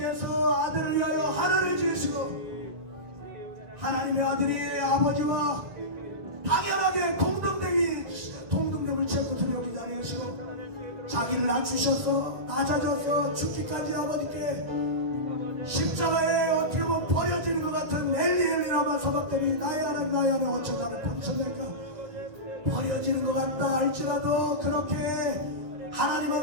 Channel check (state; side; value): late; left; 1.4 ms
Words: 아들을 위하여 하늘을 지으시고 하나님의 아들이 아버지와 당연하게 동등됨을 채고 여기지 아니하시고 자기를 낮추셔서 낮아져서 죽기까지 아버지께 십자가에 어떻게 보면 버려지는 것 같은 엘리엘리라마 서박대니 나야는 어째 나를 버리셨을까. 버려지는 것 같다 할지라도 그렇게